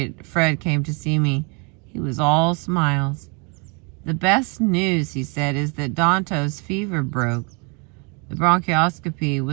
came to see me. He was all smiles. "The best news," he said, "is that Danto's fever broke. The bronchoscopy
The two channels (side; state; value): left; quieter; 33.2 dB